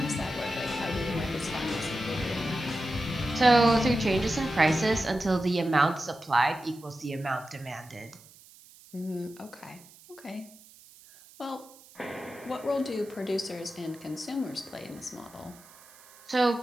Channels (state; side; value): noise; right; hiss, 23 dB below the sound